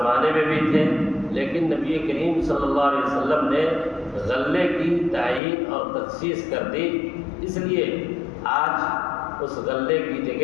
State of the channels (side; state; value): right; drops out; at 5.4 s